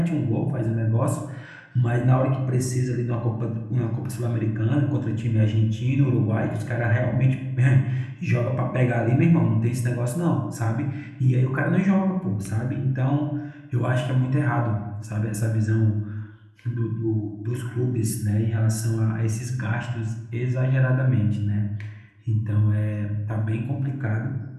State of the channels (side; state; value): both; identical; correlation 1.00